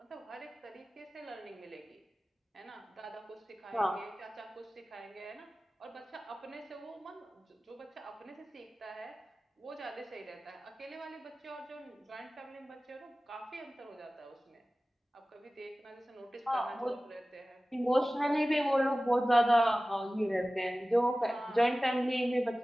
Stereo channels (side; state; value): both; normal; correlation 0.97